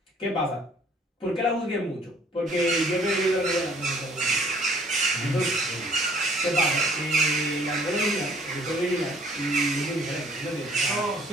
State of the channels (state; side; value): normal; both; correlation 0.58